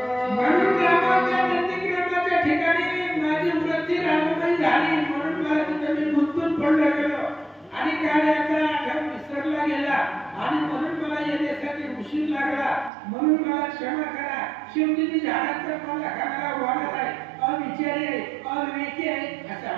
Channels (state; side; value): drops out; left; at 12.9 s